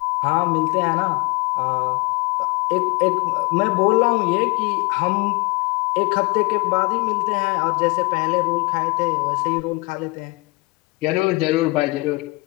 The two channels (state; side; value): quieter; right; 26.0 dB